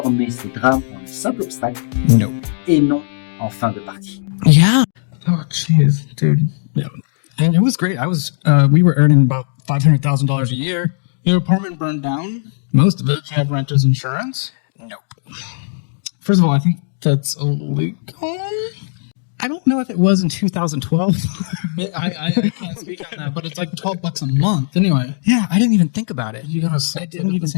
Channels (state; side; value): silent; right; digital silence